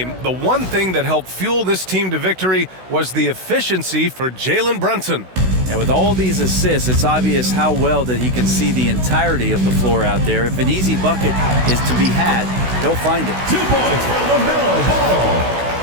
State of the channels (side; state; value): left; late; 16 ms